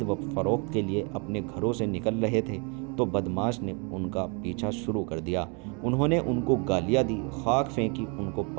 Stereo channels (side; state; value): left; quieter; 34.1 dB